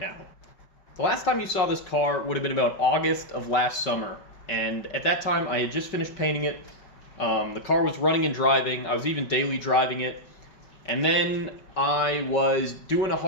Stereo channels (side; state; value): right; late; 5.3 ms